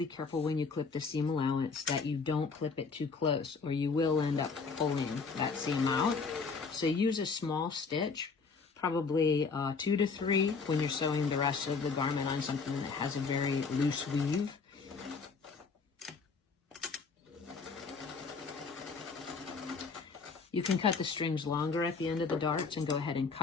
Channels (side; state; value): right; quieter; 4.8 dB